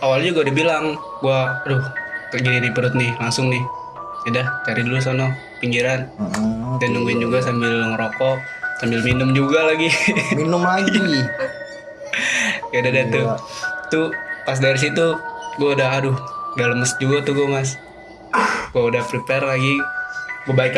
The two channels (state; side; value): identical; both; correlation 1.00